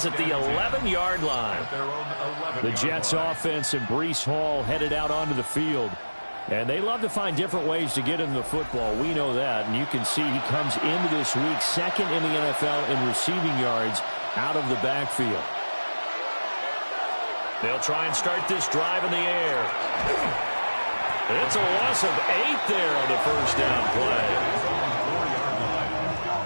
at the 11-yard line. The Jets offense and Breece Hall headed out onto the field. And they love to find different ways to get into the football. We know that. And you can see he comes into this week 2nd in the NFL in receiving yards out of the backfield. They'll try and start this drive in the air. It's a loss of 8 there on the 1st down play.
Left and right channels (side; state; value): both; inverted; correlation -1.00